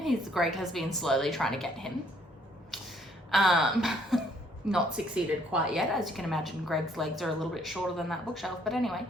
Greg has been slowly trying to get him. Not succeeded quite yet. As you can imagine, Greg's legs are a little bit shorter than that bookshelf. But anyway,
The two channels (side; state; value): both; normal; correlation 0.65